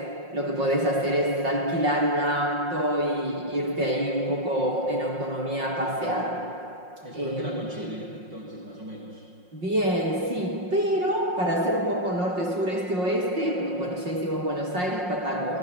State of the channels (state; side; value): late; left; 5.5 ms